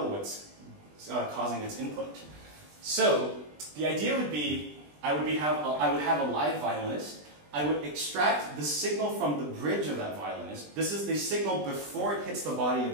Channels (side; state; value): left; late; 20 ms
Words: what's causing its input. So the idea would be, I would have a live violinist. I would extract the signal from the bridge of that violinist. This is the signal before it hits the body